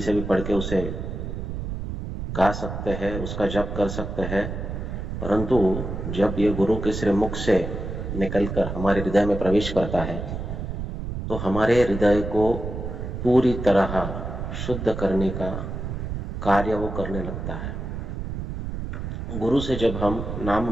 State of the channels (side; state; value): right; noise; rumble, 5 dB below the sound